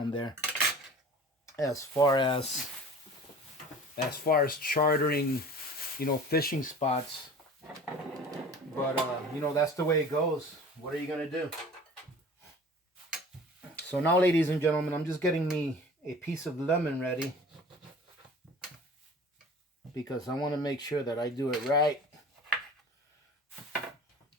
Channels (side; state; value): both; normal; correlation 0.43